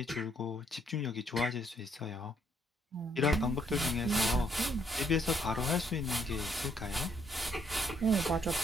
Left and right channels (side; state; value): both; normal; correlation 0.70